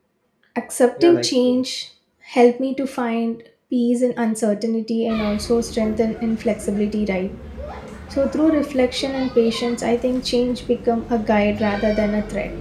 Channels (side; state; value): both; identical; correlation 1.00